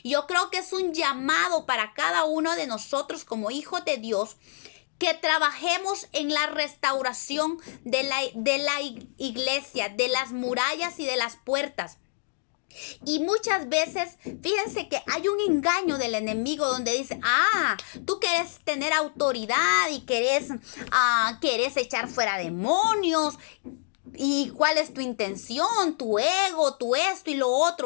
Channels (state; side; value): silent; right; digital silence